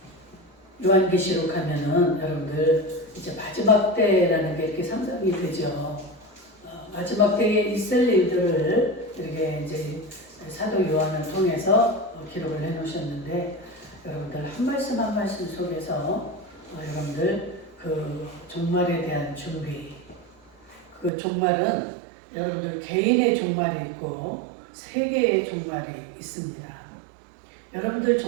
요한계시록 하면은 여러분들 이제 마지막 때라는 게 이렇게 상상이 되죠. 마지막 때에 있을 일들을 이렇게 이제 사도 요한을 통해서 기록을 해 놓으셨는데, 여러분들 한 말씀 한 말씀 속에서 여러분들 그 종말에 대한 준비, 그 종말은 여러분들 개인의 종말이 있고 세계의 종말이 있습니다. 여러분들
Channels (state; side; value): drops out; left; at 21.1 s